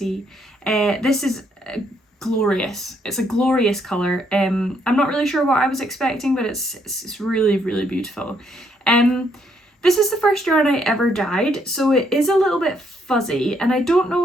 This is glorious. It's a glorious colour. I'm not really sure what I was expecting, but it's really, really beautiful. This is the first yarn I ever dyed, so it is a little bit fuzzy, and I don't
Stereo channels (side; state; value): both; normal; correlation 0.72